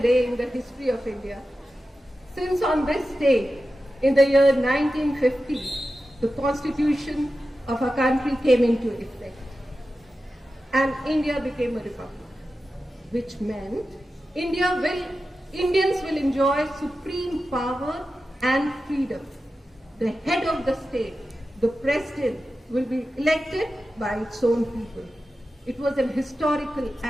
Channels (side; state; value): both; normal; correlation 0.92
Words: in the history of India. Since on this day, in the year 1950, the constitution of our country came into effect and India became a republic, which meant Indians will enjoy supreme power and freedom. The head of the state, the president, will be elected by its own people. It was an historical